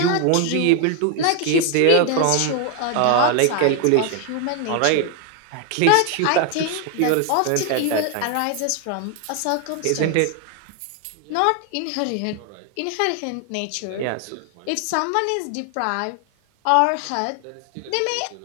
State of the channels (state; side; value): different; both; correlation 0.00